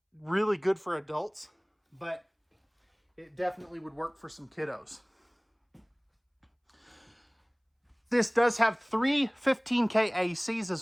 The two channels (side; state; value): both; identical; correlation 1.00